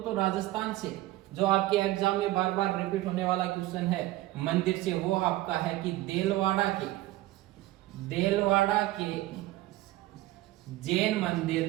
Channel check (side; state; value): left; quieter; 16.8 dB